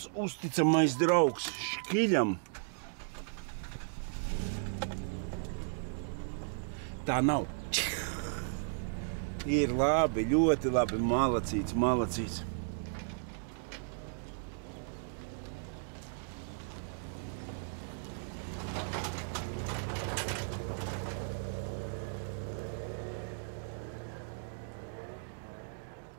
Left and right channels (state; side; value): silent; left; digital silence